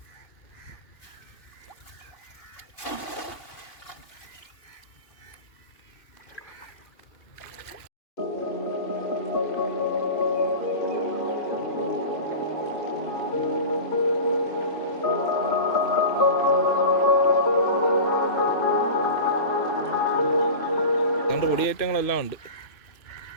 അതുകൊണ്ട് പൊടിയേറ്റങ്ങളെല്ലാം ഉണ്ട്.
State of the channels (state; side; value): late; right; 2.5 ms